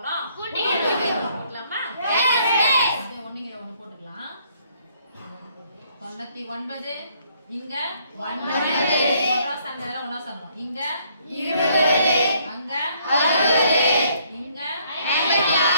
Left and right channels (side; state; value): both; inverted; correlation -0.66